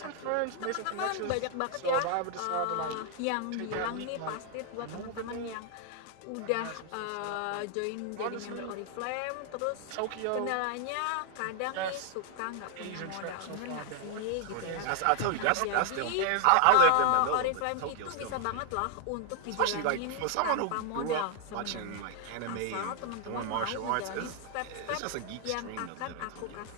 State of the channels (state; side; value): different; both; correlation 0.00